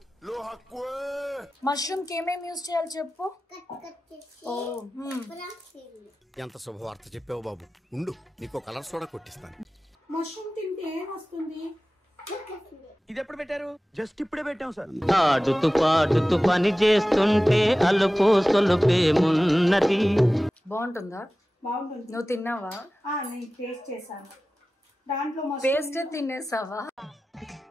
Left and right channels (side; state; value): both; normal; correlation 0.96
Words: lohakwe mushroom కి ఏమేం use చేయాలి చెప్పు. ఎంత శుభవార్త చెప్పావు బాబు. ఉండు నీకు కలర్ సోడా కొట్టిస్తాను. మష్రూమ్ తింటే ఏమొస్తుంది? ఇది ఎప్పుడు పెట్టారు? జస్ట్ ఇప్పుడే పెట్టాం సార్. ఆడుతూ పాడుతూ పని చేస్తుంటే అలుపు సొలుపేమున్నది. బాగుంటుందా? బాగుంటుంది. నువ్వు తిన్నావా? నేను టేస్ట్ చేశాను. దాంట్లో పేస్ట్ తినేసావా?